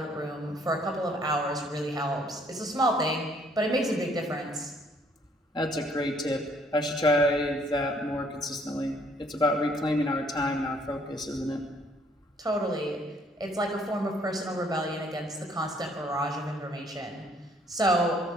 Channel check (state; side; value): normal; both; correlation 0.63